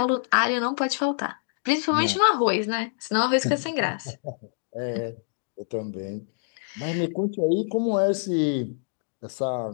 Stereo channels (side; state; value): right; silent; digital silence